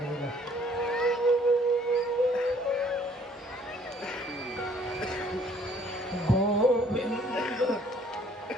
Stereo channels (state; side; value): normal; both; correlation 0.60